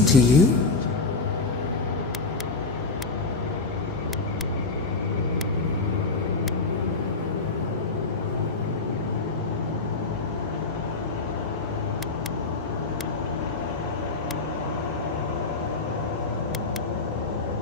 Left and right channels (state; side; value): quieter; right; 3.8 dB